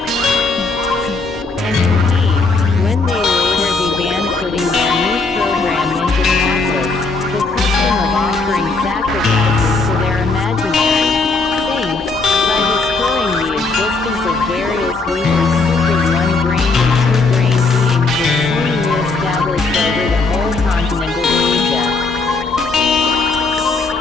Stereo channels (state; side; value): quieter; right; 3.8 dB